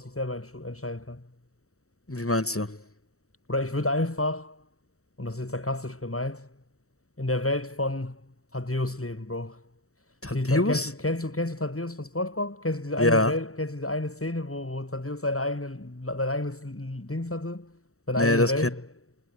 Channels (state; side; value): late; right; 0.64 ms